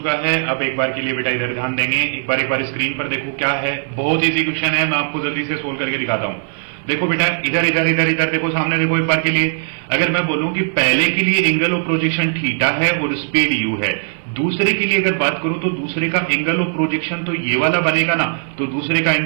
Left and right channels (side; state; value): left; silent; 56 dB below the other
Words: है। अब एक बार के लिए बेटा इधर ध्यान देंगे, एक बार स्क्रीन पर देखो क्या है। बहुत इजी क्वेश्चन है, मैं आपको जल्दी से सोल्व करके दिखाता हूं। देखो बेटा इधर इधर इधर इधर देखो, सामने देखो एक बार के लिए। अगर मैं बोलूं कि पहले के लिए एंगल ऑफ प्रोजेक्शन थीटा है और स्पीड यू है, दूसरे के लिए अगर बात करूं तो दूसरे का एंगल ऑफ प्रोजेक्शन तो ये वाला बनेगा ना, तो दूसरे का